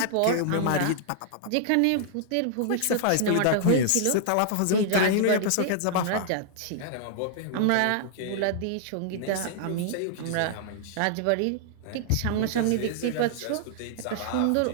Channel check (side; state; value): both; different; correlation -0.01